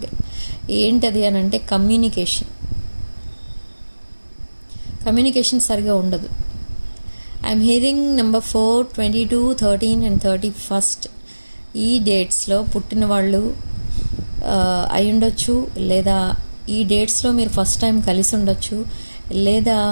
ఏంటది అని అంటే కమ్యూనికేషన్ సరిగా ఉండదు. ఐఎమ్ హియరింగ్ నెంబర్ 4, 22, 13 and 31 ఈ డేట్స్లో పుట్టిన వాళ్ళు అయి ఉండొచ్చు, లేదా ఈ డేట్స్లో మీరు ఫస్ట్ టైం కలిసి ఉండొచ్చు, లేదా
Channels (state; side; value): inverted; both; correlation -1.00